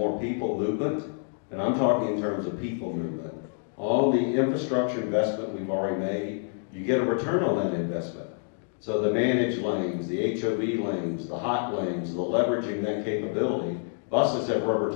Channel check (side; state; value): right; silent; digital silence